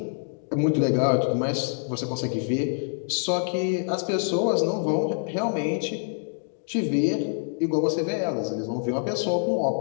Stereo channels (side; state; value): right; silent; digital silence